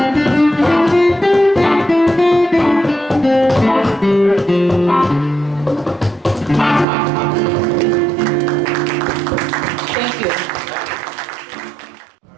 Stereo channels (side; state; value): left; drops out; at 6.9 s